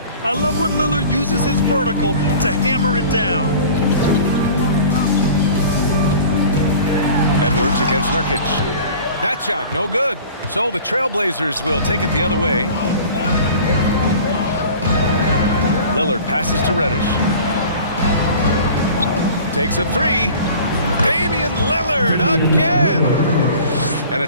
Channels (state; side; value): inverted; both; correlation -0.43